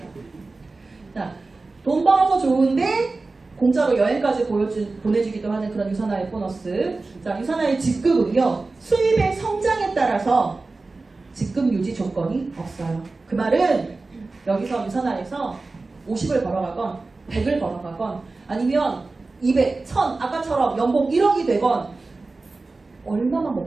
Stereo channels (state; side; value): quieter; left; 3.6 dB